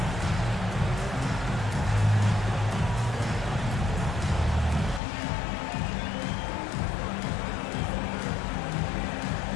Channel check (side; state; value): right; drops out; at 5.0 s